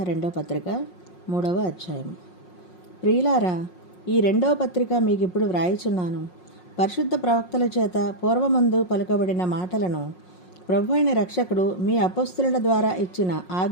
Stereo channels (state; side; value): late; right; 5.5 ms